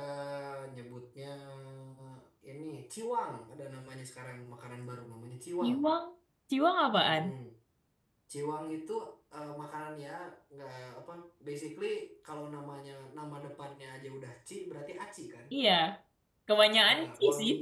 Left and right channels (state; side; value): identical; both; correlation 1.00